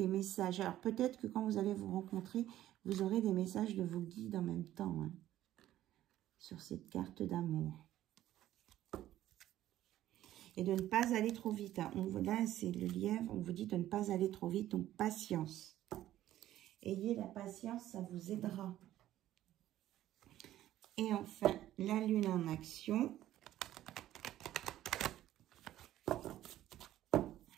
messages. Alors peut-être que quand vous allez vous rencontrer, vous aurez des messages de vos guides en même temps, hein, sur cette carte d'amour. Et de ne pas aller trop vite. Hein. Là, c'est le lièvre, on vous dit de ne pas aller trop vite, donc patience. Ayez la patience, ça vous aidera. Et enfin, la lune en action.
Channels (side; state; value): left; quieter; 13.4 dB